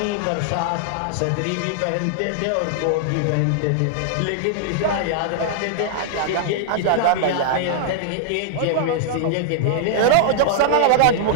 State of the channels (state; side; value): different; both; correlation -0.01